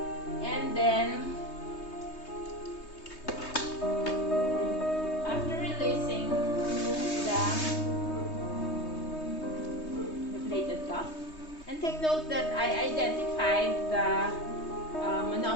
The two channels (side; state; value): right; late; 3.2 ms